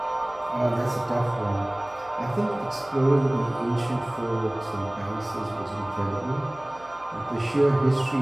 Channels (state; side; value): noise; right; hum, 24 dB below the sound